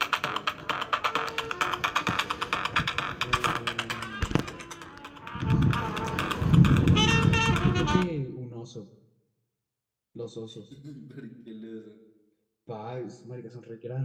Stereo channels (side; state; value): both; identical; correlation 1.00